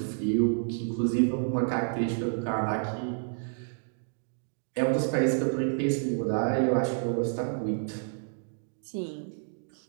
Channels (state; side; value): silent; left; digital silence